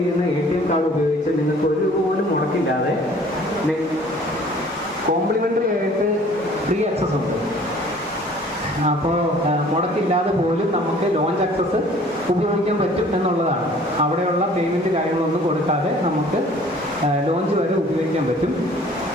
ATM കാർഡ് ഉപയോഗിച്ച് നിങ്ങൾക്ക് ഒരു രൂപ പോലും മുടക്കില്ലാതെ കോംപ്ലിമെൻ്ററി ആയിട്ട് ഫ്രീ ആക്സസ് ഉണ്ട്. അപ്പോൾ മുടക്കില്ലാതെ പോലും നമുക്ക് ലോഞ്ച് ആക്സസ് ഉപയോഗിക്കാൻ പറ്റും എന്നുള്ളതാണ്. അവിടെയുള്ള പേയ്മെൻറ്റ് കാര്യങ്ങളൊന്നും കൊടുക്കാതെ നമുക്ക് ലോഞ്ച് വരെ ഉപയോഗിക്കാൻ പറ്റും.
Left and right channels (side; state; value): both; normal; correlation 0.52